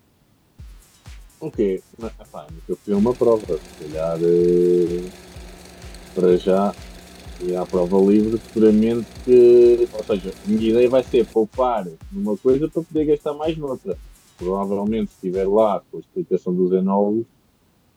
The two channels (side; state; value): both; identical; correlation 1.00